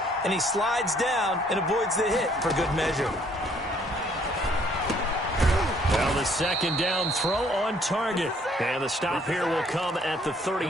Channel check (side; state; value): both; normal; correlation 0.63